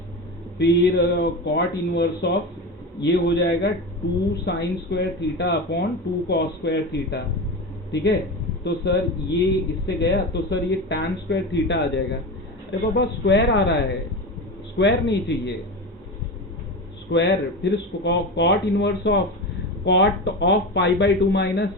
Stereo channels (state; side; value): normal; both; correlation 0.23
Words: फिर cot इनवर्स ऑफ ये हो जाएगा 2 sign square theta upon 2 cos square theta, ठीक है। तो सर ये इससे गया तो सर ये tan स्क्वायर थीटा आ जाएगा। अरे बाबा स्क्वायर आ रहा है, स्क्वायर नहीं चाहिए, स्क्वायर। फिर cot inverse of cot of pi by 2